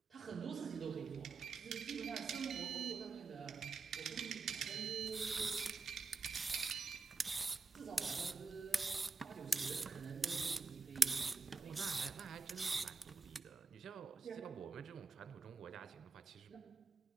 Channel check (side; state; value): left; quieter; 4.5 dB